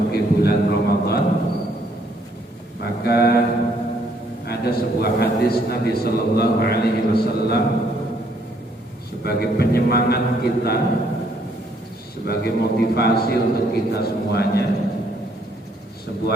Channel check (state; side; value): normal; both; correlation 0.68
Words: bulan Ramadan. Maka ada sebuah hadis Nabi sallallahu alaihi wasallam sebagai penyemangat kita, sebagai motivasi untuk kita semuanya.